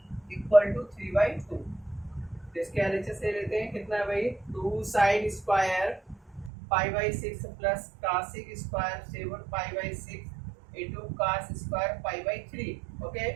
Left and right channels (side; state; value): left; drops out; at 6.5 s